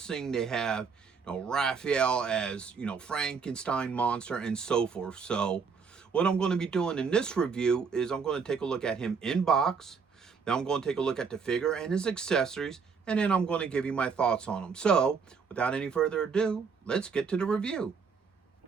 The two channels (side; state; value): left; quieter; 5.6 dB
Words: they have Raphael as, Frankenstein monster, and so forth. So what I'm going to be doing in this review is I'm going to take a look at him in box. Then I'm going to take a look at the figure and his accessories, and then I'm going to give you my thoughts on him. So without any further ado, let's get to the review.